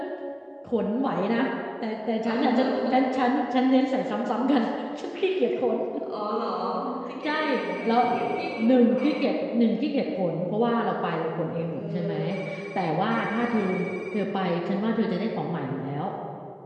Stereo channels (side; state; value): both; identical; correlation 1.00